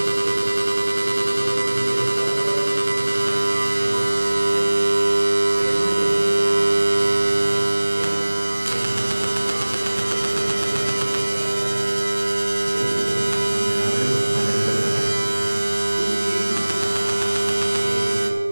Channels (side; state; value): both; inverted; correlation -1.00